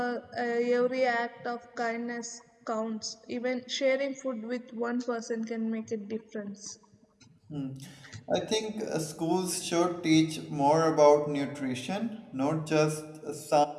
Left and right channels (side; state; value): both; identical; correlation 1.00